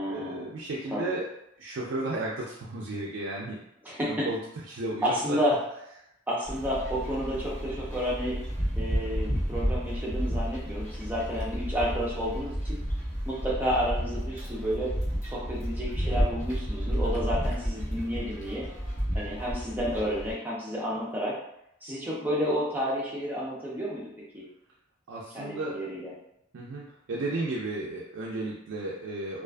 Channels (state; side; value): normal; both; correlation 0.60